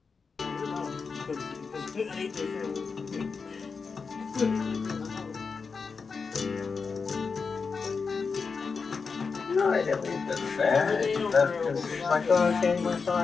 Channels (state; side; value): quieter; right; 5.0 dB